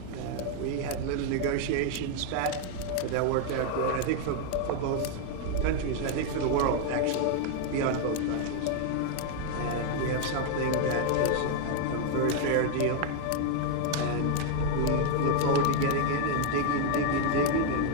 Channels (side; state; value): both; different; correlation 0.00